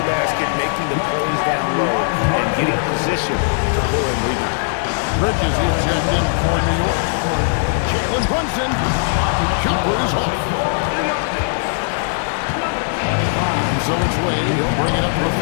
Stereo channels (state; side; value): silent; right; 65 dB below the other